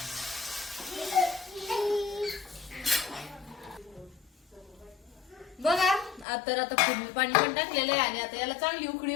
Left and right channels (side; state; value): right; drops out; at 6.2 s